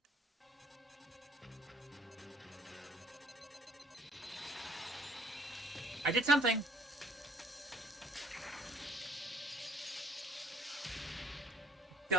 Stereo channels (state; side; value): normal; both; correlation 0.59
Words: I did something!